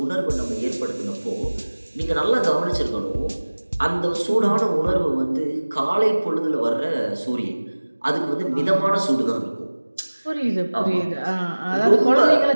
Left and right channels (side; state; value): both; inverted; correlation -1.00